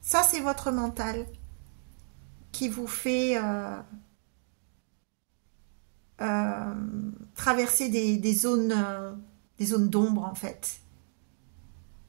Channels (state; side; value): silent; left; digital silence